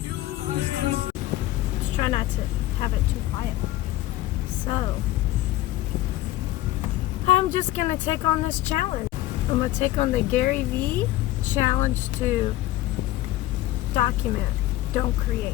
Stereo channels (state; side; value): quieter; right; 15.7 dB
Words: Just try not to have it too quiet. So, I'm just going to take on this challenge. I'm going to take on the Gary V challenge to document, don't create.